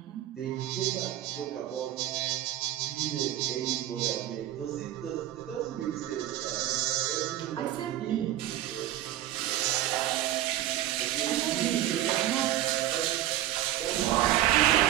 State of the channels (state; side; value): quieter; left; 13.2 dB